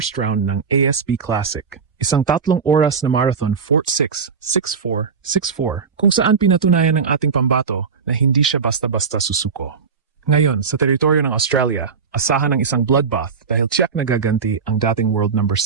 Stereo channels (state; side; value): quieter; left; 5.7 dB